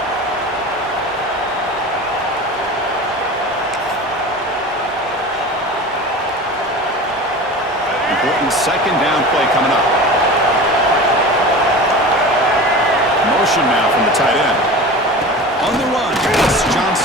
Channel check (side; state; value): both; normal; correlation 0.34